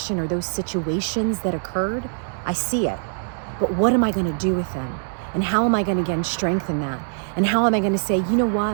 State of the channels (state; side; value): silent; left; digital silence